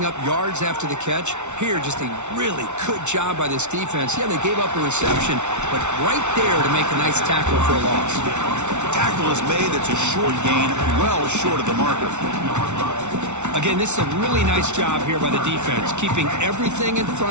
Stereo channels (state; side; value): late; left; 0.83 ms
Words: up yards after the catch? Here, just a really good job by this defense. Yeah, they gave up a reception, but right there to make a nice tackle for a loss. Tackle is made. It's a short gain, well short of the marker. Again, this is a really nice job here by the defense, keeping everything in